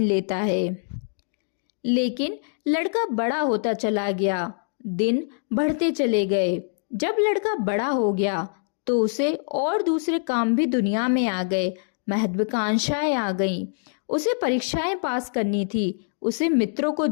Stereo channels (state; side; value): silent; right; digital silence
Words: लेता है। लेकिन लड़का बड़ा होता चला गया, दिन बढ़ते चले गए। जब लड़का बड़ा हो गया तो उसे और दूसरे काम भी दुनिया में आ गए। महत्वाकांक्षाएं आ गईं। उसे परीक्षाएं पास करनी थी, उसे मित्रों को